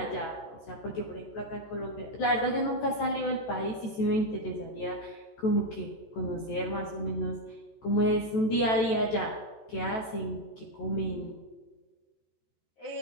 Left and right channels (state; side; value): late; right; 14 ms